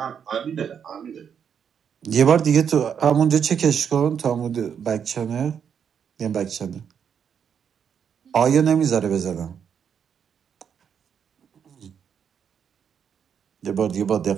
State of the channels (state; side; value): quieter; left; 7.7 dB